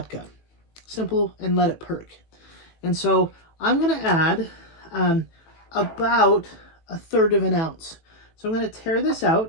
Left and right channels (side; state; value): right; late; 18 ms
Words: Simple, and let it perk. And so I'm going to add about 1/3 of an ounce. So I'm going to tear this